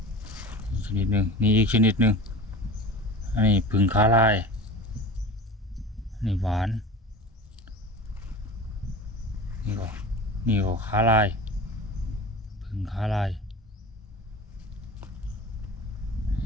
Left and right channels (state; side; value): normal; both; correlation 0.34